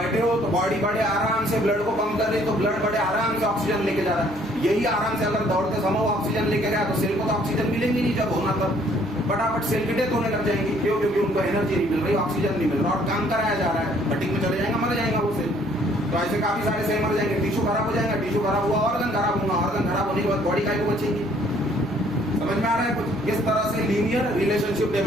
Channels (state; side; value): noise; right; hum, 23 dB below the sound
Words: हो तो बॉडी बड़े आराम से ब्लड को पंप कर रही है, तो ब्लड बड़े आराम से ऑक्सीजन लेके जा रहा है। यही आराम से अगर दौड़ते समय ऑक्सीजन लेके गया तो सेल को तो ऑक्सीजन मिलेंगी नहीं, जब होना तब फटाफट सेल की डेथ होने लग जाएंगी। क्यों? क्योंकि उनको एनर्जी नहीं मिल रही, ऑक्सीजन नहीं मिल रहा और काम कराया जा रहा है। फटीग में चले जाएगा, मर जाएगा वो सेल। तो ऐसे काफी सारे सेल मर जाएंगे, टिश्यू खराब हो जाएगा, टिश्यू खराब हुआ ऑर्गन खराब होगा, ऑर्गन खराब होने के बाद बॉडी का बचेगी। समझ में आ रहा है कुछ? किस तरह से लीनियर रिलेशनशिप